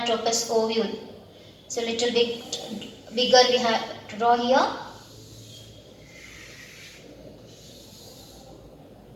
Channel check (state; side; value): identical; both; correlation 1.00